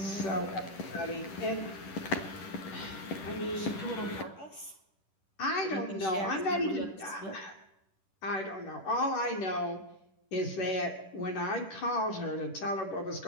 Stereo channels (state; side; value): late; right; 10 ms